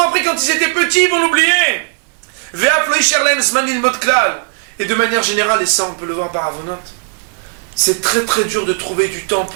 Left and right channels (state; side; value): silent; left; digital silence